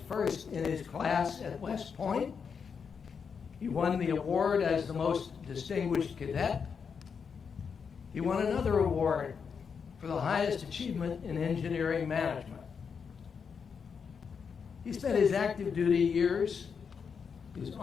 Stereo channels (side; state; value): right; quieter; 6.2 dB